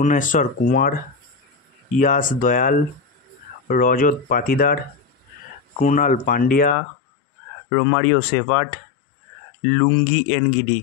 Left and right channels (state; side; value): drops out; right; at 6.8 s